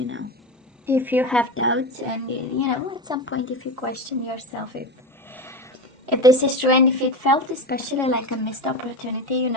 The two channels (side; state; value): both; normal; correlation 0.21